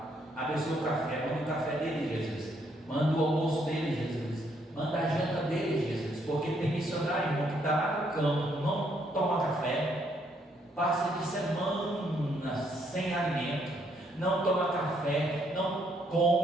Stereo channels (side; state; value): both; normal; correlation 0.71